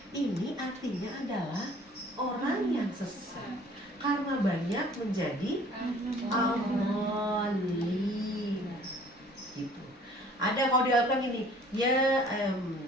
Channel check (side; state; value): both; normal; correlation 0.53